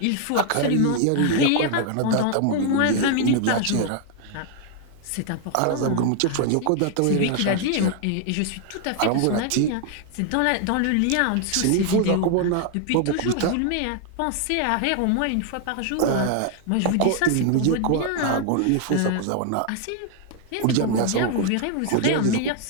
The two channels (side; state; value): both; different; correlation 0.00